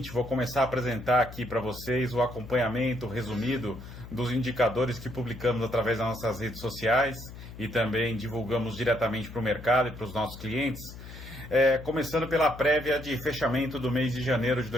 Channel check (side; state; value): left; noise; hum, 14 dB below the sound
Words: vou começar a apresentar aqui para vocês o acompanhamento resumido dos indicadores que publicamos através das nossas redes sociais e também divulgamos diretamente para o mercado e para os nossos clientes. Começando pela prévia de fechamento do mês de janeiro de